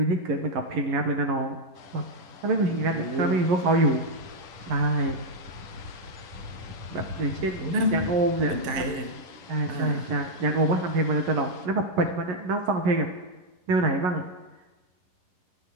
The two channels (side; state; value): left; late; 11 ms